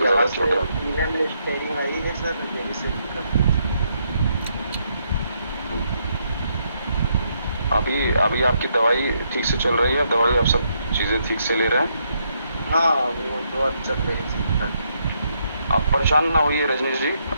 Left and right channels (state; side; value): inverted; both; correlation -0.76